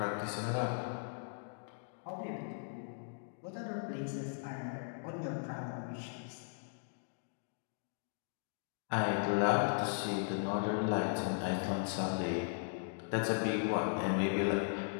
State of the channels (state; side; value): silent; right; digital silence